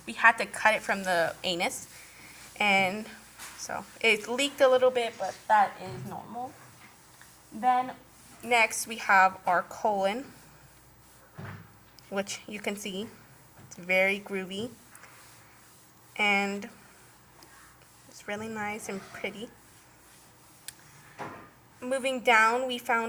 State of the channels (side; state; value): both; identical; correlation 1.00